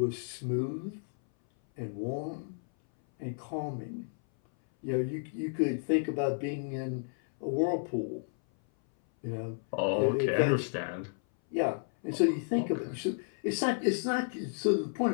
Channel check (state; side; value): silent; right; 56 dB below the other